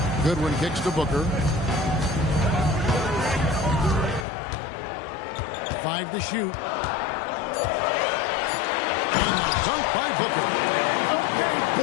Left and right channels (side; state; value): right; drops out; at 4.2 s